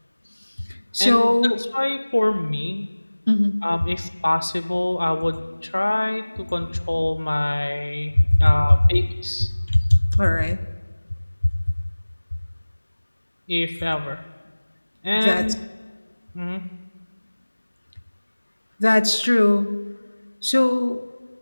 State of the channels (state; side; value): inverted; both; correlation -1.00